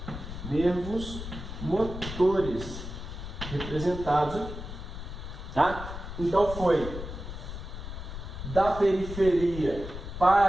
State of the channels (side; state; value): left; noise; rumble, 8 dB below the sound